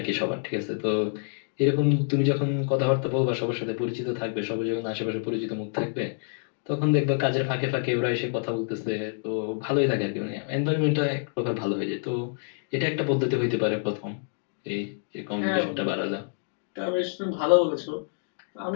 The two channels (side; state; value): right; silent; digital silence